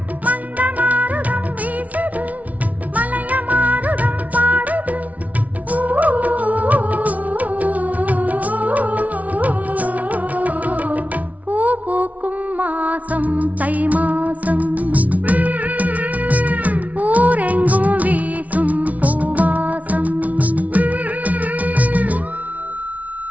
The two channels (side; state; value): left; late; 0.070 ms